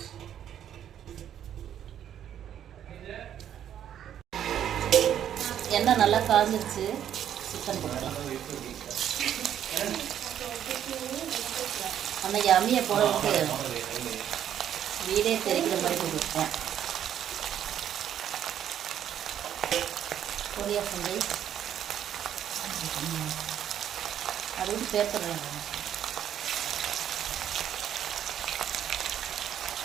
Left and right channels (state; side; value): quieter; left; 10.1 dB